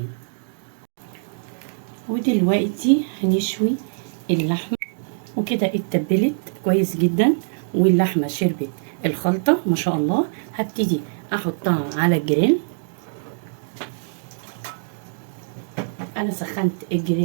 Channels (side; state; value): left; silent; digital silence